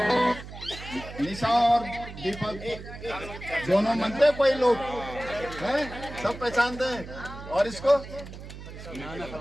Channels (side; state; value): right; noise; hum, 13 dB below the sound